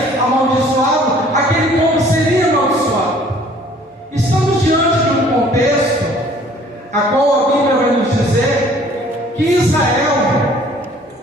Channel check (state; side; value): normal; both; correlation 0.55